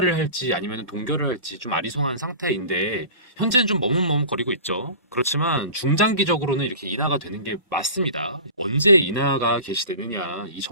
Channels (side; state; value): both; inverted; correlation -0.38